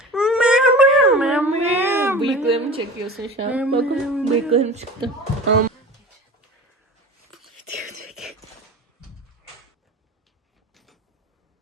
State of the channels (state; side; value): normal; both; correlation 0.35